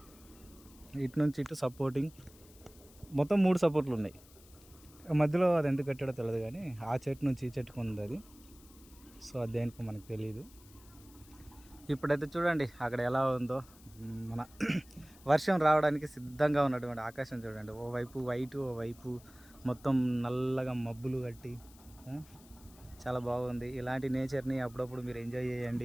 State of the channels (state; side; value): noise; left; hiss, 24 dB below the sound